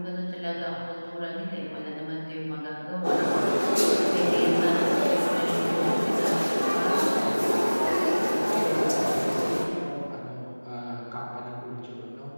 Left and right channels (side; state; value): both; inverted; correlation -1.00